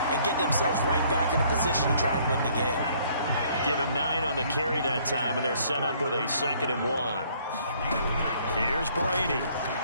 and get themselves right back in a position to try and win the game. Give him 9 on the carry that time, and they're set up with a 2nd and 1. Here's Brady.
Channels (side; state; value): both; inverted; correlation -0.62